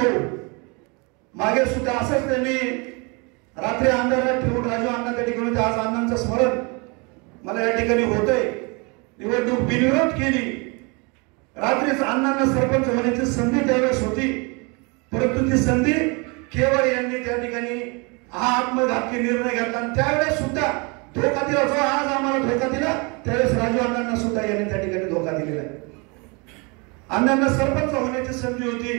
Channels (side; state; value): left; quieter; 30.2 dB